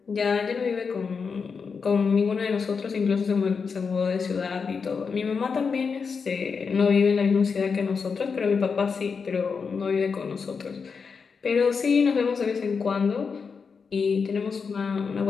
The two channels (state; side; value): quieter; right; 5.5 dB